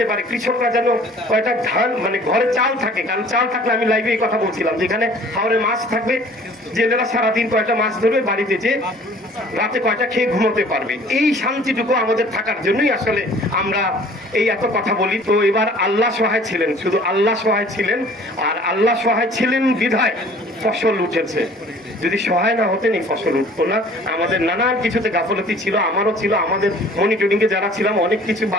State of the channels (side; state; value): both; normal; correlation 0.51